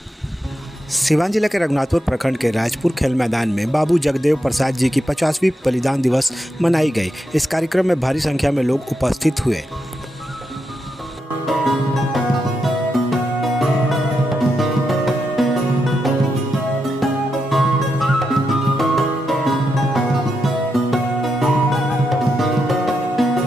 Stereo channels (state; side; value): normal; both; correlation 0.85